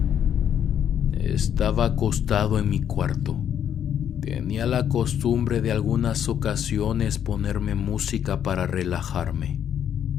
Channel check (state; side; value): quieter; right; 9.3 dB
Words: Estaba acostado en mi cuarto. Tenía la costumbre de algunas ocasiones ponerme música para relajarme.